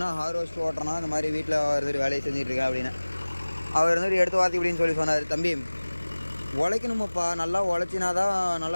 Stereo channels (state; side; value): inverted; both; correlation -1.00